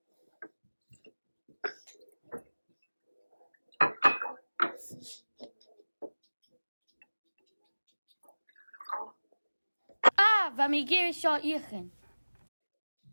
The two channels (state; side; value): inverted; both; correlation -1.00